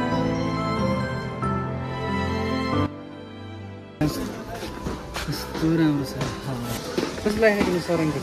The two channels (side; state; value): both; identical; correlation 1.00